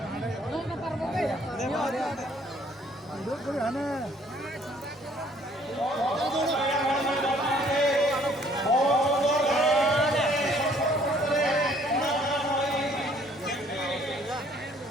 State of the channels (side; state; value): both; normal; correlation 0.60